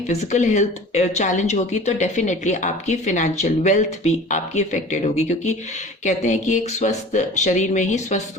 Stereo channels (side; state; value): both; normal; correlation 0.42